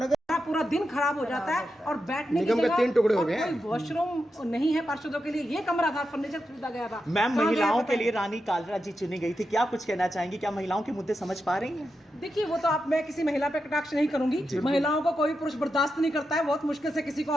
पूरा दिन खराब हो जाता है। और बैठने की जगह 3 टुकड़े हो गए हैं, वॉशरूम नहीं है पार्षदों के लिए, ये कमरा था, फर्नीचर खरीदा गया था। मैम महिलाओं के लिए रानी कालरा जी चुनी गई थी, क्या कुछ कहना चाहेंगी? क्या महिलाओं के मुद्दे समझ पा रही हैं? देखिए वो तो मैं किसी महिला पे कटाक्ष नहीं करूंगी, महिलाओं को कोई पुरुष बर्दाश्त नहीं करता है, बहुत मुश्किल से किसी को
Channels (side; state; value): both; normal; correlation 0.88